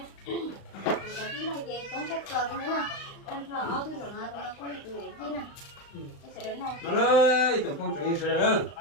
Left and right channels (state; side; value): late; right; 35 ms